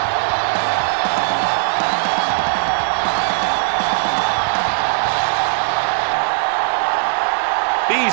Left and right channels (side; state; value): left; silent; digital silence